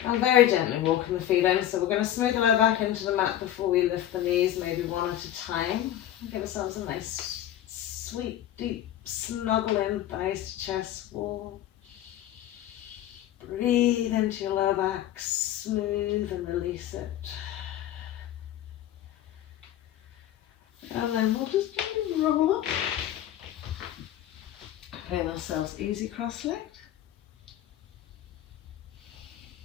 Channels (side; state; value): right; quieter; 12.1 dB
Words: And very gently walking the feet in. So we're going to smooth the lower back into the mat before we lift the knees, maybe one at a time. Give ourselves a nice, sweet, deep snuggle in, thighs to chest wall. Breathe into your lower back, smooth and release it. And then we'll just roll up. Putting ourselves easy cross-legged.